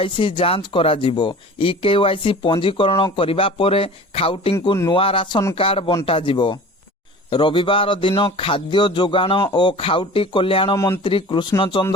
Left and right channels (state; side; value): normal; both; correlation 0.40